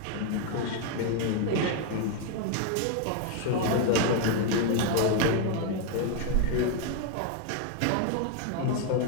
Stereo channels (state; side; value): different; both; correlation 0.01